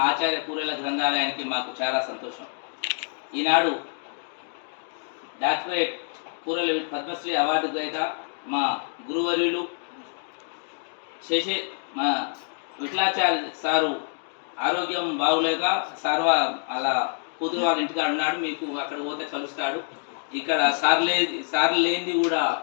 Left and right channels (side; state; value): right; silent; 61 dB below the other